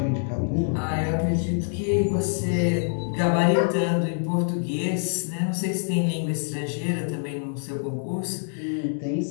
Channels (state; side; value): silent; right; digital silence